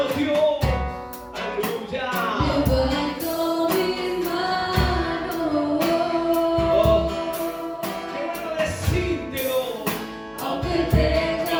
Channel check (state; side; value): identical; both; correlation 1.00